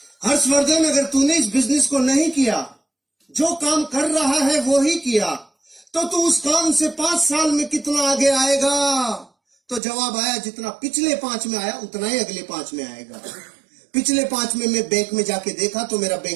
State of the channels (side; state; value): left; drops out; at 9.8 s